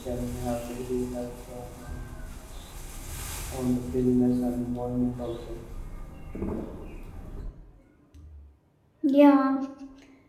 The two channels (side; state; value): both; identical; correlation 1.00